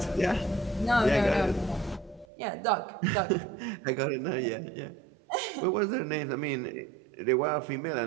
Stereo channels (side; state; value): left; drops out; at 2.2 s